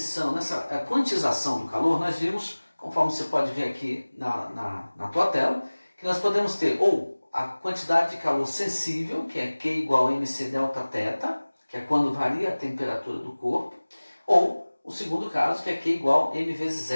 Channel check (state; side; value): inverted; both; correlation -1.00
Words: nessa quantização do calor, nós vimos, conforme você pode ver aqui na tua tela, que nós podemos ter ou a quantidade de calor sensível, que é Q igual a mc delta θ, que é quando varia a temperatura do corpo, ou o segundo caso, que é Q igual a M vezes